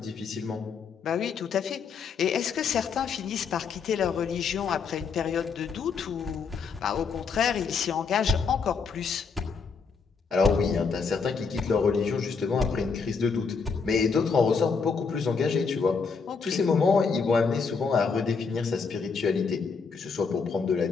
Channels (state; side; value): quieter; right; 5.3 dB